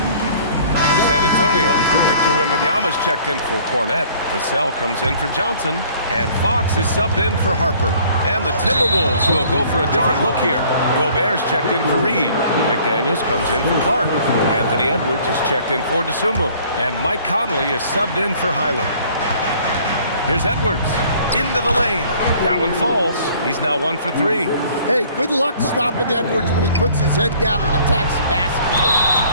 Victor Wembanyama's checked in for Cornette. Vassell comes in for Johnson. And Fox is subbed in for Harper. And the Timberwolves will go for a different look here. Gobert's checked in for Reed. McDaniels comes in for Clark. Anthony Edwards is checked in for DeSumo. And Mike Conley is subbed in for Highland. Here's Edwards. Into the lane. That one falls. He's now 1 for 3. Hey, good luck stopping Edwards when he puts his head down and attacks the basket.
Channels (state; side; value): inverted; both; correlation -0.54